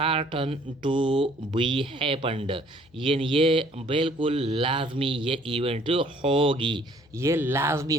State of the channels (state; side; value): noise; left; hum, 30 dB below the sound